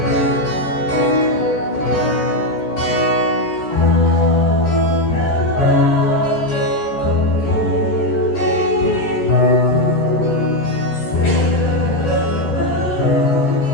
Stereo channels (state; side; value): late; right; 14 ms